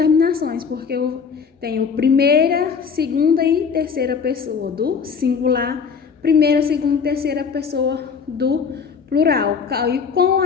porque eu tenho primeira, segunda e terceira pessoa do singular, primeira, segunda e terceira pessoa do plural. E com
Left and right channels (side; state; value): right; quieter; 6.0 dB